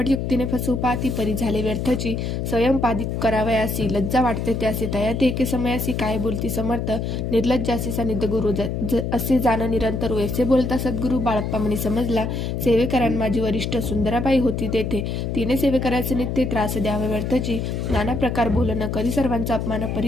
फसवू पाती परी झाले व्यर्थची स्वयंपादित करावयासी लज्जा वाटते त्यासी तया ते एके समयासी काय बोलती समर्थ निर्लज्जासी सानिध्य गुरु असे जाण निरंतर ऐसे बोलता सद्गुरु बाळप्पा म्हणी समजला सेवेकरांना माझी वरिष्ठ सुंदराबाई होती तेथे तिने सेवेकराचे नित्य त्रास द्यावे व्यर्थची नाना प्रकार बोलणं कधी सर्वांचा अपमान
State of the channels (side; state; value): left; noise; hum, 2 dB below the sound